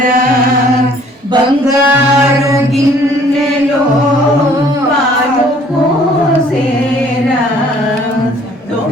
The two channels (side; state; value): both; normal; correlation 0.57